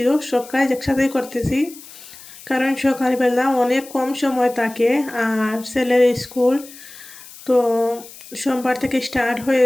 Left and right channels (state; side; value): noise; left; hiss, 18 dB below the sound